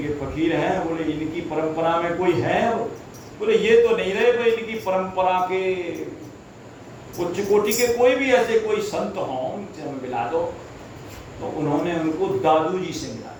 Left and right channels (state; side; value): identical; both; correlation 1.00